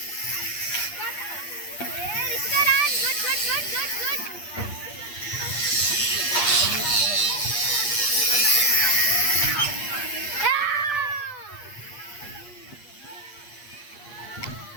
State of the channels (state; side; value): late; right; 8.5 ms